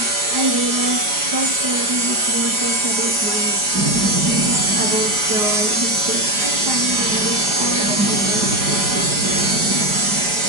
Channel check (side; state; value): left; late; 4.9 ms